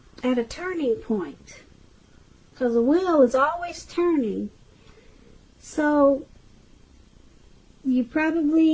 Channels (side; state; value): both; identical; correlation 1.00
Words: a turning point. Because the wheel is always turning. So you